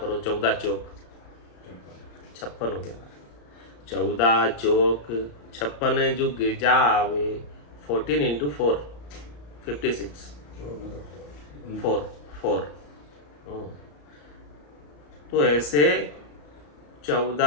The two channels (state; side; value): late; right; 34 ms